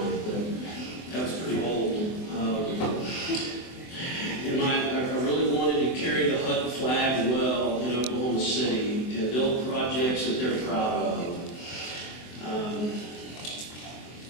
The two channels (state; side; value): late; right; 24 ms